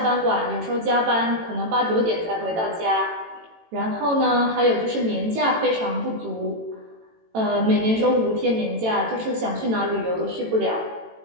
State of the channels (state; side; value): late; left; 18 ms